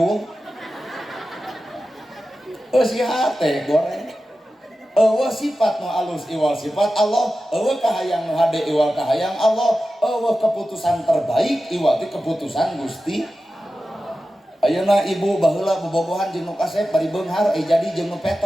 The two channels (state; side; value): normal; both; correlation 0.93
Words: si hate goreng eueuh sifat nu alus iwal sifat Allah eueuh kahayang nu hade iwal kahayang Allah eueuh keputusan terbaik iwal ti keputusan Gusti ayeuna ibu baheula bobogohan jeung nu kasep bari beunghar jadi jeung nu